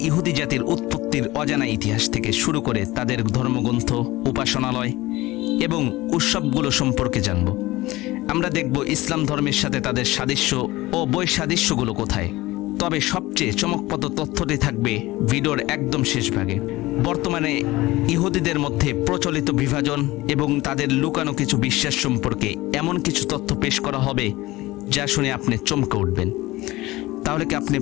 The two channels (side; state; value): right; quieter; 19.0 dB